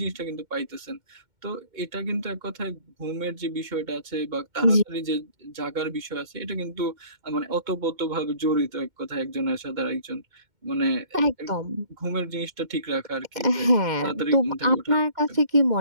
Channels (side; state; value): left; late; 2.1 ms